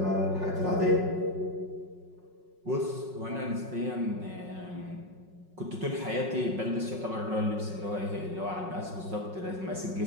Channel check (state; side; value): late; left; 5.5 ms